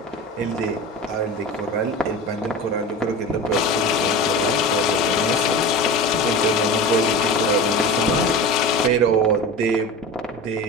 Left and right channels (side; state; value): both; normal; correlation 0.31